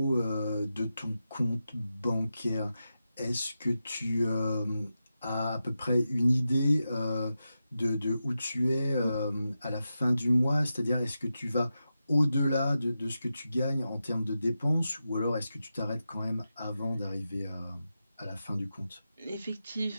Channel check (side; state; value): both; inverted; correlation -0.90